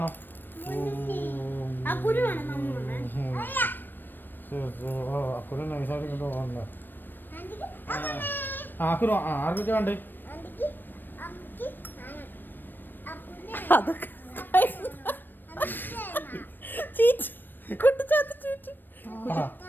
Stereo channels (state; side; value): late; right; 0.093 ms